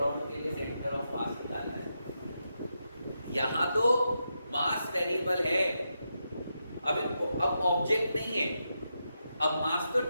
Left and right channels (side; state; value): both; inverted; correlation -0.85